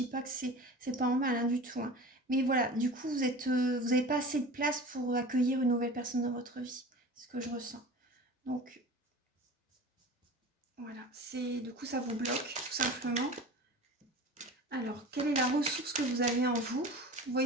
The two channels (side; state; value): both; normal; correlation 0.37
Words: pas que c'est pas en mal hein, du tout. Hein. Mais voilà, du coup vous n'avez pas assez de place pour accueillir une nouvelle personne dans votre vie. C'est ce que je ressens. Donc voilà, du coup ça vous bloque tout simplement. Alors, quelle est la ressource que vous avez en vous? Vous